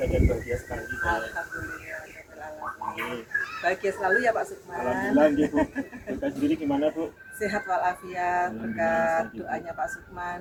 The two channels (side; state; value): both; identical; correlation 1.00